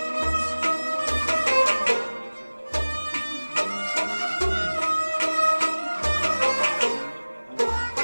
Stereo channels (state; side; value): inverted; both; correlation -1.00